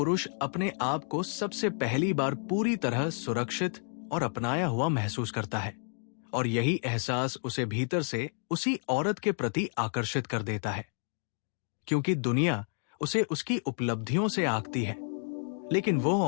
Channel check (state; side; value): silent; right; 58 dB below the other